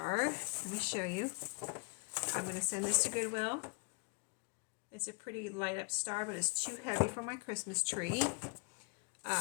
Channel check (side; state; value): right; quieter; 33.2 dB